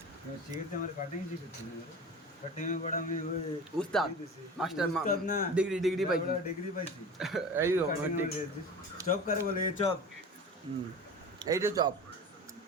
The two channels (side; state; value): both; normal; correlation 0.34